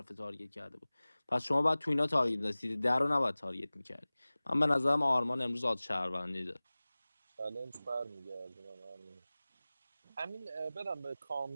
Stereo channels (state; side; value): inverted; both; correlation -0.99